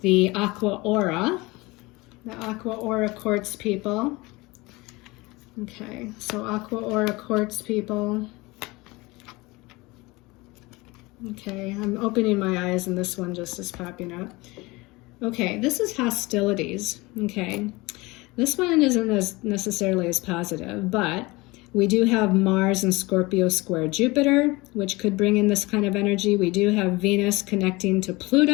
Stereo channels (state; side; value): quieter; right; 22.9 dB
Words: Aqua Aura, the Aqua Aura Quartz people. Okay, so Aqua Aura Quartz people. Okay, I'm opening my eyes and this one just is popping up. Okay, this is hostilities. Okay, this one isn't as necessarily as positive, but we do have Mars and Scorpio square Jupiter, which could bring in this kind of energy. We do have Venus connecting to